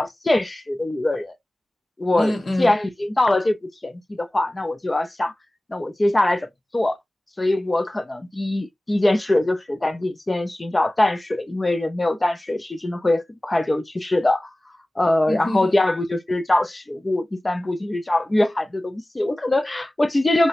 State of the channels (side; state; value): both; normal; correlation 0.97